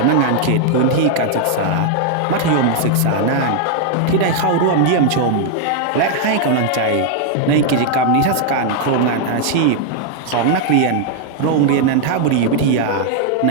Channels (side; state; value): both; different; correlation 0.00